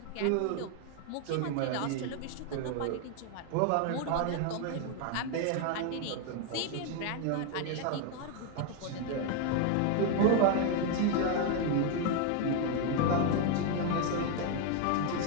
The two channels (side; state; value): both; different; correlation 0.01